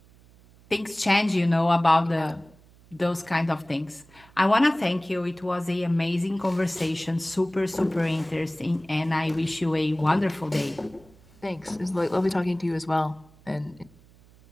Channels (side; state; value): right; noise; hum, 27 dB below the sound